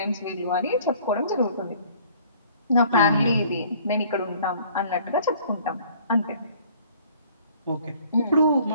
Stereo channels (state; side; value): inverted; both; correlation -0.55